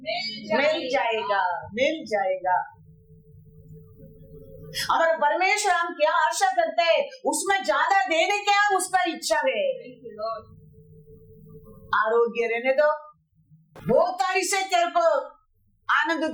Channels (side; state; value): both; identical; correlation 1.00